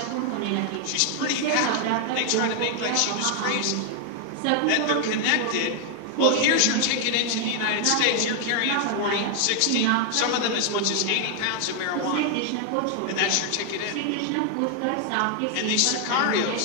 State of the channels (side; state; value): both; different; correlation 0.00